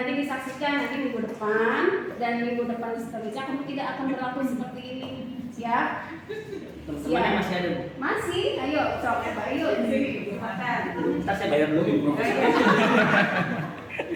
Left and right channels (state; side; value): identical; both; correlation 1.00